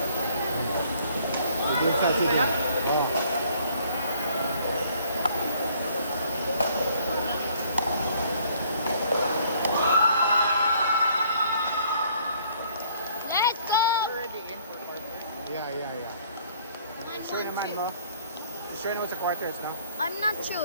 Yeah. Sure naman, no? You sure know it's a quarters, no? I'm not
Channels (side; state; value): both; inverted; correlation -0.61